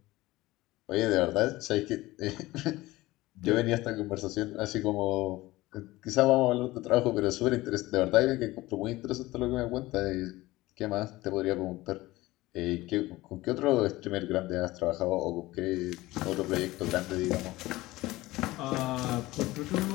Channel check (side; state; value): right; quieter; 18.7 dB